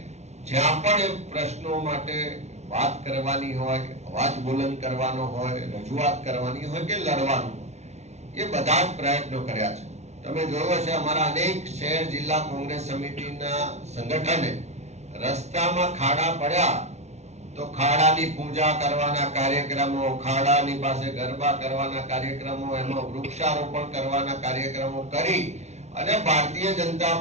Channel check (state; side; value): late; left; 0.32 ms